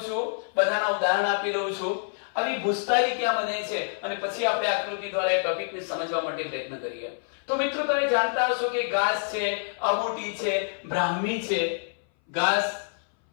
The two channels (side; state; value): right; silent; 59 dB below the other